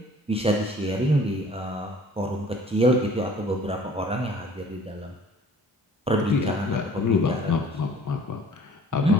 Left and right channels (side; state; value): both; normal; correlation 0.51